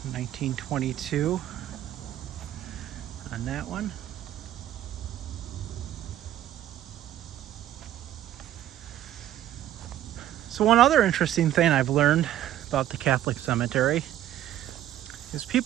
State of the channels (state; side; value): quieter; left; 12.6 dB